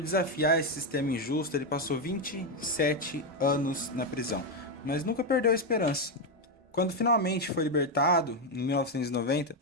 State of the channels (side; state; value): both; normal; correlation 0.06